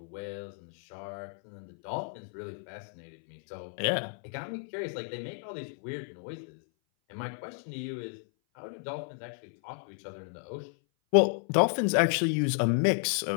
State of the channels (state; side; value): silent; right; 56 dB below the other